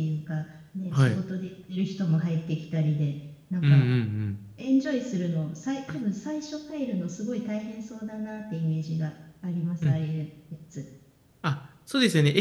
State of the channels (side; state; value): both; identical; correlation 1.00